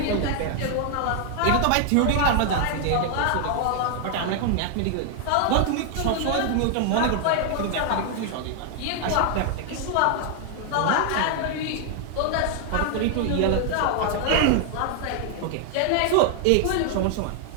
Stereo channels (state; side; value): different; both; correlation 0.00